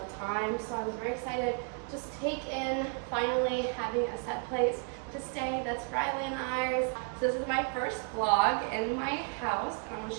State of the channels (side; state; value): left; quieter; 39.0 dB